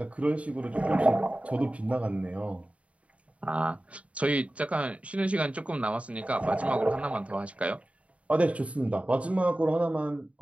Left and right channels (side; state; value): left; late; 0.065 ms